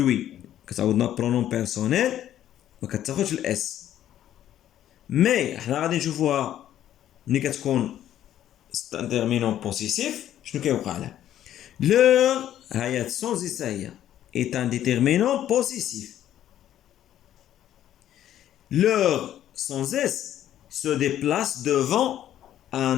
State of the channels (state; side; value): quieter; right; 11.6 dB